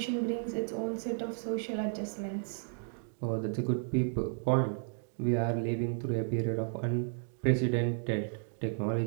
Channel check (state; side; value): silent; left; 56 dB below the other